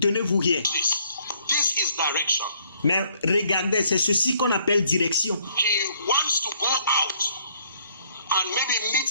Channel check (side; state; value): both; inverted; correlation -0.64